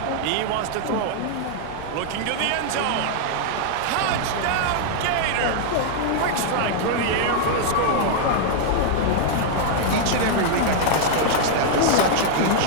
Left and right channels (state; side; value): different; both; correlation -0.01